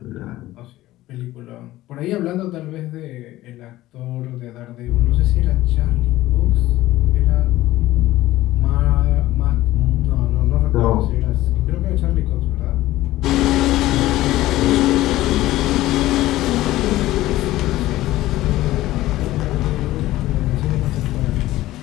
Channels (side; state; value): right; quieter; 16.1 dB